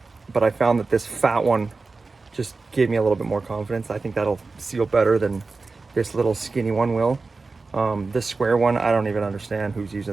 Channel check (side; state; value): left; quieter; 3.9 dB